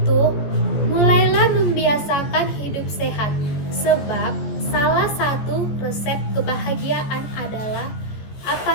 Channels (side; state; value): right; late; 14 ms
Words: mulailah membiasakan hidup sehat, sebab salah satu resep kebahagiaan adalah